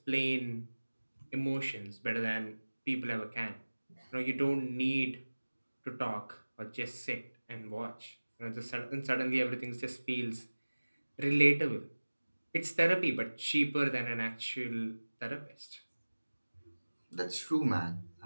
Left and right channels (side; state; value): both; inverted; correlation -1.00